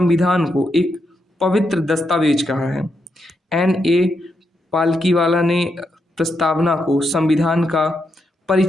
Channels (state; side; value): normal; both; correlation 0.82